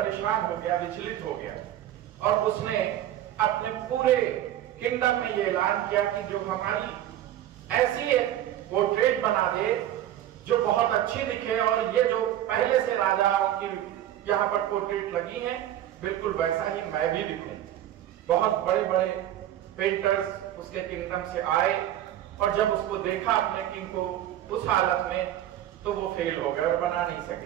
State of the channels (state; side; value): quieter; left; 12.3 dB